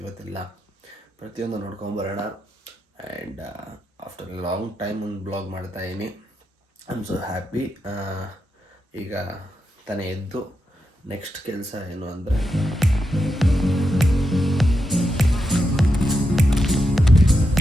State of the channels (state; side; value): normal; both; correlation 0.86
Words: ಇವತ್ತೆಲ್ಲ ಪ್ರತಿಯೊಂದು ನೋಡ್ಕೊಂಬರೋಣ. And after a long time ಒಂದು ಬ್ಲಾಗ್ ಮಾಡ್ತಾಯಿದ್ದೀನಿ. I am so happy. ಈಗ ತಾನೇ ಎದ್ದು ನೆಕ್ಸ್ಟ್ ಕೆಲಸ ಏನು ಅಂದರೆ